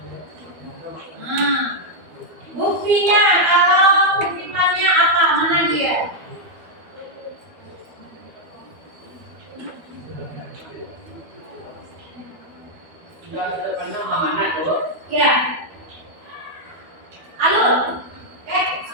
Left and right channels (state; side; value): late; left; 12 ms